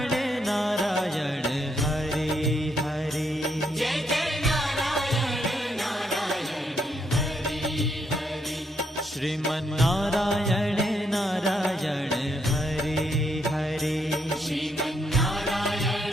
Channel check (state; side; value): normal; both; correlation 0.76